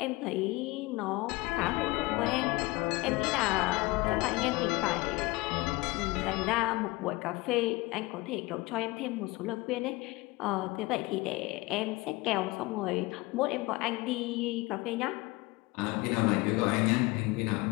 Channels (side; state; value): right; quieter; 22.3 dB